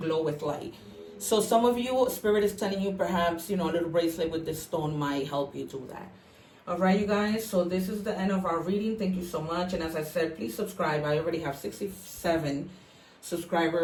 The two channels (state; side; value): identical; both; correlation 1.00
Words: glow with light. So some of you, Spirit is telling you perhaps, you know, a little bracelet with this stone might help you do that. All right, you guys, so this is the end of our reading. Thank you so much. And as I said, please subscribe. I already have 67